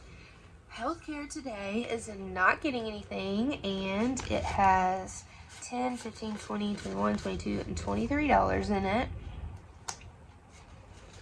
healthcare today is not getting anything, and it has $10, $15, $20, $21, $22, and $23 in it.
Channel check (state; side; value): identical; both; correlation 1.00